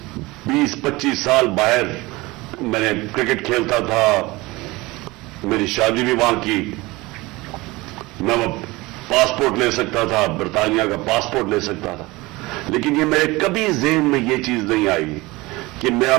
20-25 سال باہر میں نے کرکٹ کھیلتا تھا, میری شادی بھی وہاں کی, میں پاسپورٹ لے سکتا تھا, برطانیہ کا پاسپورٹ لے سکتا تھا, لیکن یہ میرے کبھی ذہن میں یہ چیز نہیں آئی کہ میرا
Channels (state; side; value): quieter; left; 21.7 dB